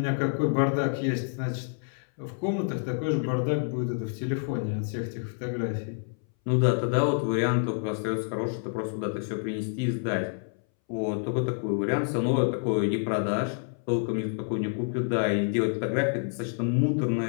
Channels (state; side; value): silent; right; 59 dB below the other